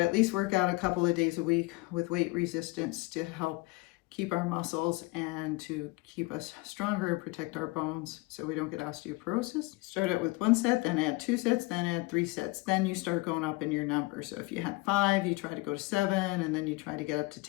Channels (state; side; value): quieter; right; 23.3 dB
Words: at least work out a couple of days a week with weight resistance to help keep our muscles and to keep us stronger and protect our bones so we don't get osteoporosis. Start out with 1 set, then add 2 sets, then add 3 sets. Then you start going up in your number. So if you had 5, you try to go to 7, and then you try to get up to